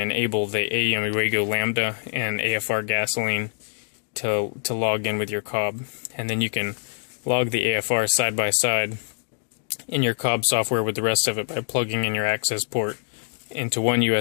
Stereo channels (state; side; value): silent; right; digital silence